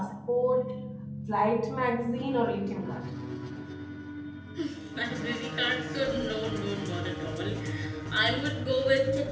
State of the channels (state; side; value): identical; both; correlation 1.00